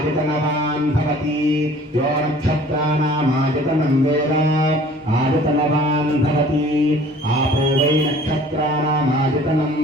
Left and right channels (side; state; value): both; normal; correlation 0.50